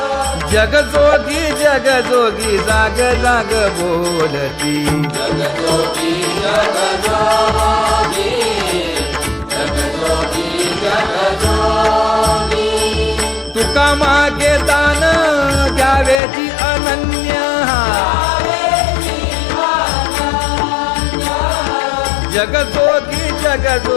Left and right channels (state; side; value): drops out; right; at 16.2 s